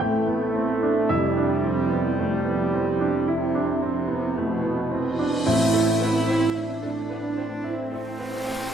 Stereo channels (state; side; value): normal; both; correlation 0.72